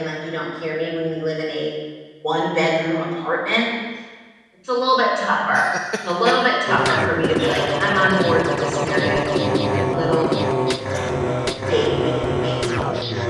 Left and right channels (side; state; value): both; identical; correlation 1.00